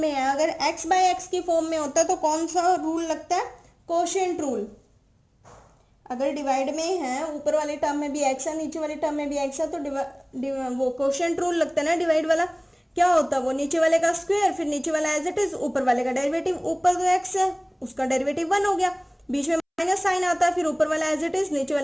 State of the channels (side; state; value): both; identical; correlation 1.00